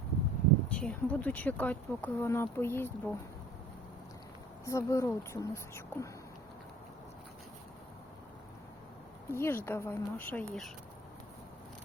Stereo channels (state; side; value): normal; both; correlation 0.50